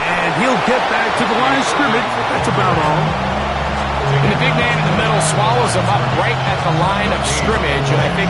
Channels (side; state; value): both; identical; correlation 1.00